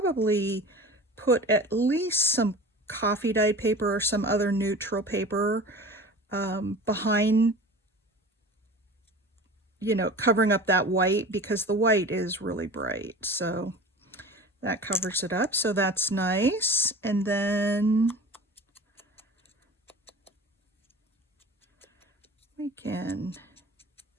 put at least some coffee dyed paper or some other neutral paper behind, you know, covering up that white, because the white is really bright. So that covers it up. So that's nice. And then we can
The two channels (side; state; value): both; normal; correlation 0.38